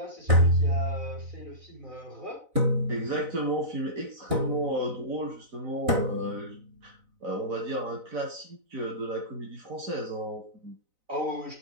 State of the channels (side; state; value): left; late; 4.0 ms